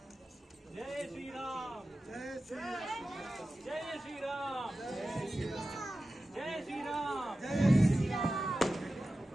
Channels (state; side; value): normal; both; correlation 0.94